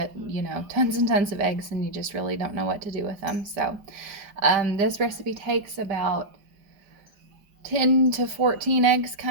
tons and tons of eggs and you just really don't know what to do with them. So this recipe takes about 10 to 14 eggs,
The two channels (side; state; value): left; late; 5.2 ms